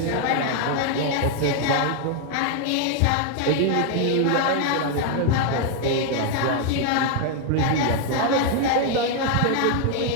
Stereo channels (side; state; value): both; different; correlation 0.00